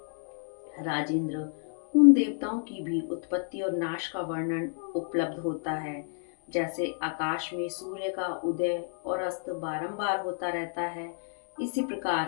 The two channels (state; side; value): silent; right; 58 dB below the other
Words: राजेंद्र, उन देवताओं की भी उत्पत्ति और नाश का वर्णन उपलब्ध होता है। जैसे आकाश में सूर्य का उदय और अस्त बारंबार होता रहता है, इसी